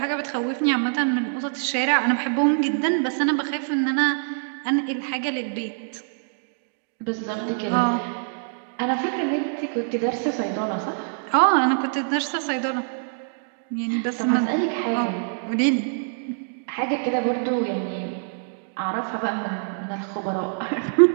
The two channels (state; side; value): silent; left; digital silence